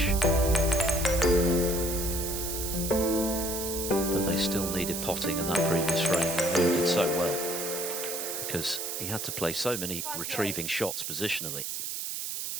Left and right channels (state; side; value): noise; right; hiss, 4 dB below the sound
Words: But they still needed potting in that previous frame, and Wu did so well because he had to play so many retrieving shots positionally.